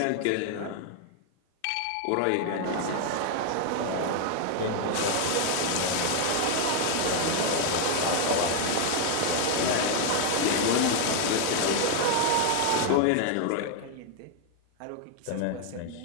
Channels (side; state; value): both; different; correlation 0.00